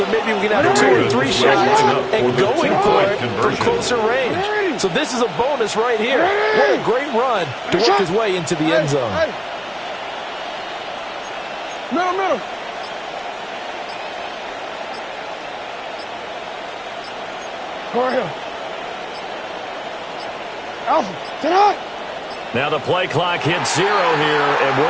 maybe we can have 2 or 3 shots and going for it from closer range. So this is a bonus right here. What a great run to work his way into the end zone. Middle. Go ahead. Alpha, sit up. Now the play clock hits 0 here, and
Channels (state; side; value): identical; both; correlation 1.00